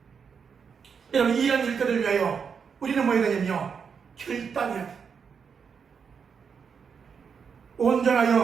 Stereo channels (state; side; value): quieter; left; 6.4 dB